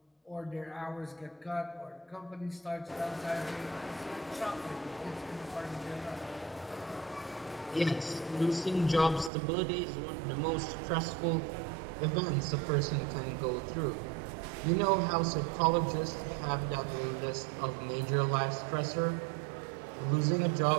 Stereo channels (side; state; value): left; drops out; at 9.3 s